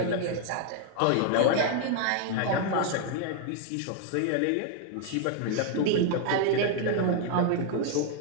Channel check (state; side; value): different; both; correlation 0.00